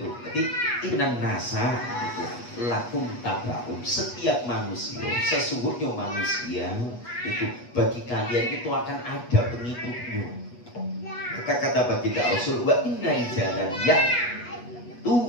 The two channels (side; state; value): right; late; 8.3 ms